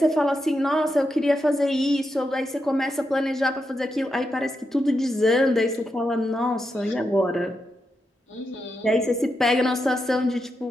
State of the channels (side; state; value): both; normal; correlation 0.85